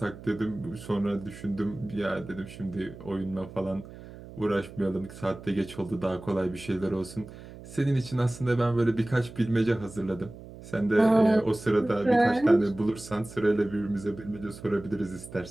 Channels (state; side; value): noise; right; hum, 16 dB below the sound